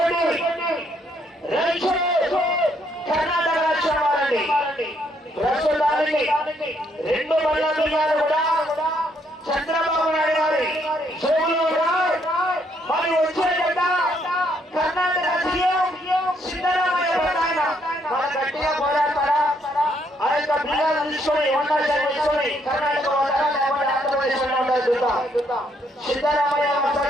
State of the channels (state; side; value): normal; both; correlation 0.71